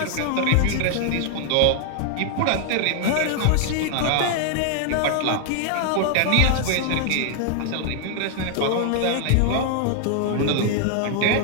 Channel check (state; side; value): different; both; correlation 0.00